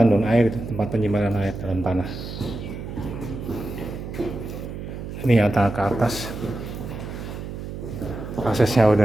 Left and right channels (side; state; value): right; noise; hum, 9 dB below the sound